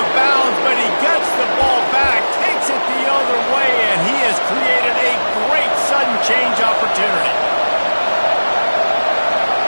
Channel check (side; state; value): both; inverted; correlation -1.00